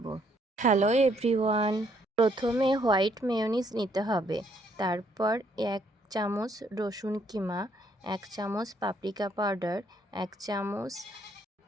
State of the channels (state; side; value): normal; both; correlation 0.69